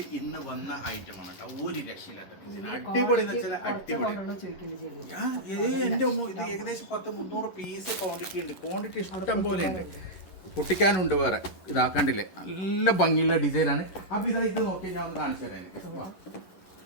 ഇന്ന് വന്ന ഐറ്റമാണ് കേട്ടോ. ഒരു രക്ഷയില്ലാത്ത അടിപൊളി എന്ന് വെച്ചാൽ അടിപൊളി. എന്റെ ഇത് ഏകദേശം 100-300 പീസ് ക്വാണ്ടിറ്റി ഉണ്ട്. ക്വാണ്ടിറ്റി ഇഷ്ടം പോലെ ഉണ്ട്. പൊട്ടിക്കാനുണ്ട് വേറെ. ഇതാക്കണ്ടില്ലേ, നല്ല ഭംഗിയുള്ള ഡിസൈനാണ്. അപ്പൊ ഇത് നോക്കി ഞാൻ ഒന്ന് കാണിച്ചു തരാം.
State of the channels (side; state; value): right; late; 11 ms